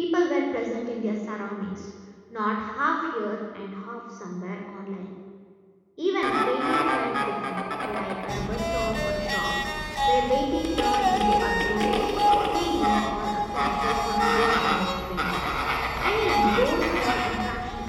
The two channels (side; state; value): both; identical; correlation 1.00